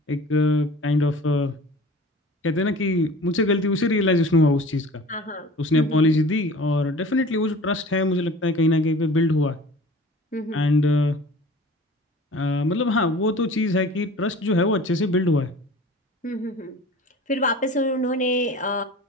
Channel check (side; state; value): both; normal; correlation 0.43